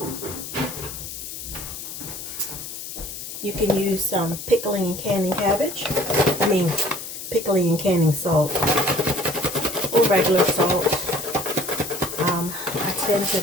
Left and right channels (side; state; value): left; noise; hiss, 9 dB below the sound